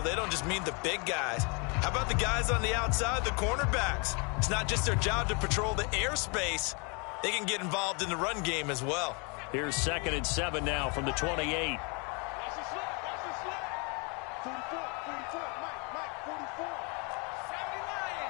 They don't just mean the big guys. How about the guys on the outside, the cornerbacks? It's not just their job to patrol the airspace. They can get involved in the run game as well. Here's 2nd and 7 now from the 28.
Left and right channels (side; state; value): right; quieter; 33.2 dB